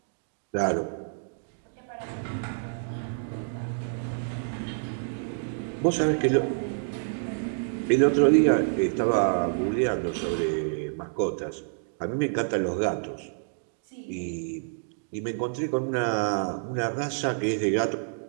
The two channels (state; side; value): silent; left; digital silence